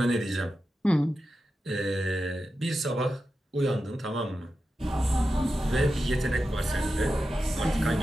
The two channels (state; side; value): normal; both; correlation 0.91